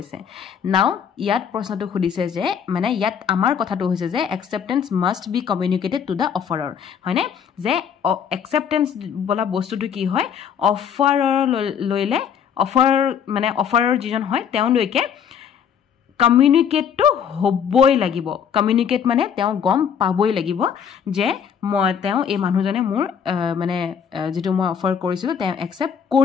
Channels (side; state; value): right; quieter; 7.8 dB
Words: নাও ইয়াত প্ৰশ্নটো খুদিছে যে মানে ইয়াত আমাৰ কথাটো হৈছে যে acceptance must be communicated to the offerer হয়নে যে acceptance বলা বস্তুটো কি হয় অফাৰৰ লইলে অফাৰ মানে অফাৰৰ যিজন হয় তেওঁ লৈকে কমিউনিকেট টু হবই লাগিব কমিউনিকেট মানে তেওঁ গম পাবই লাগিব যে মই তেওঁ এই মানুহজনে মোৰ মানে যেটো মই অফাৰ কৰিছিল তেওঁ একসেপ্ট